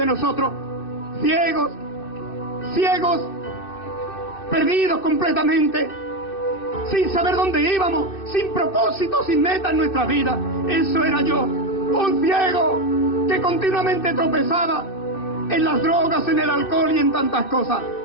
nosotros, ciegos, perdidos completamente, sin saber dónde íbamos, sin propósito, sin meta en nuestra vida. Eso era yo, un ciego que continuamente tropezaba en las drogas, en el alcohol y en tantas cosas.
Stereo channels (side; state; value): right; late; 2.6 ms